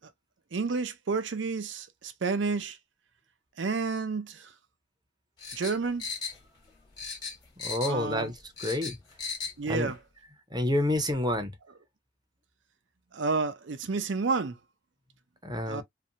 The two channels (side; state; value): both; normal; correlation 0.30